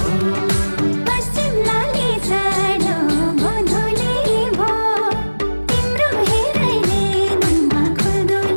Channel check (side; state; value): both; inverted; correlation -1.00